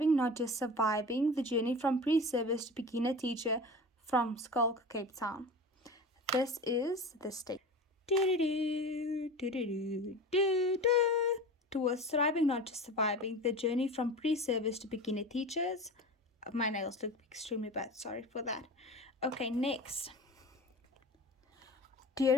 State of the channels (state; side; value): normal; both; correlation 0.33